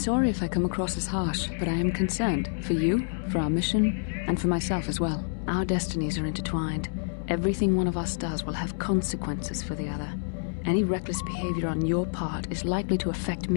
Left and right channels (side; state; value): right; silent; digital silence